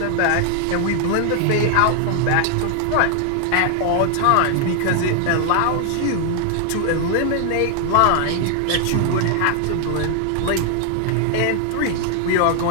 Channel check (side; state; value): both; different; correlation 0.00